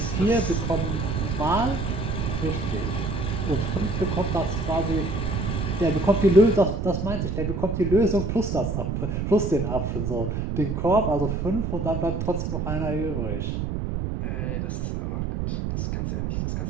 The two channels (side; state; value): right; noise; rumble, 1 dB below the sound